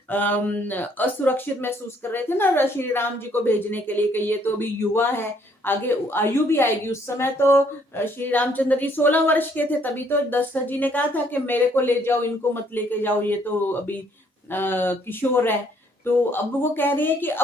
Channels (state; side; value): normal; both; correlation 0.66